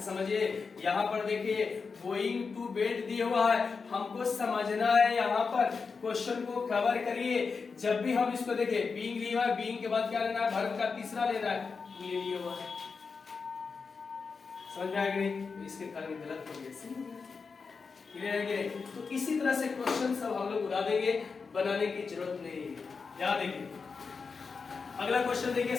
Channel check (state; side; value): quieter; right; 5.0 dB